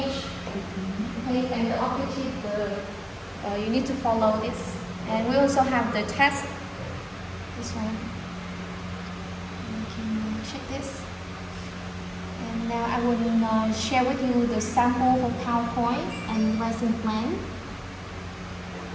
and the objective. You need to follow this. And we also have the test. This one. You can check this. And now I will share with you the sample for PowerPoint and lesson plan.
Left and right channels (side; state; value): both; identical; correlation 1.00